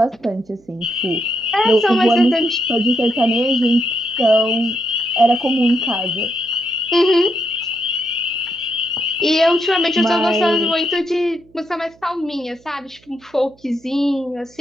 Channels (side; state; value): right; noise; hum, 30 dB below the sound